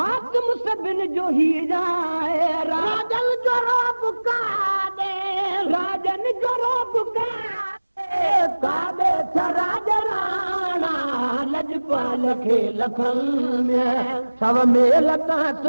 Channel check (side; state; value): both; inverted; correlation -1.00